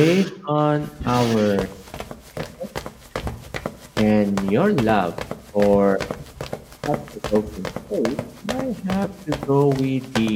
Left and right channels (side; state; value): both; identical; correlation 1.00